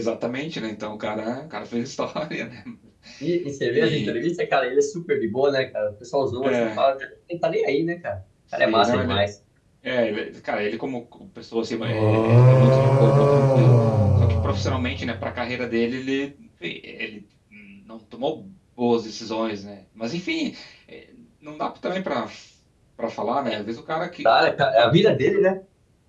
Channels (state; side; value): identical; both; correlation 1.00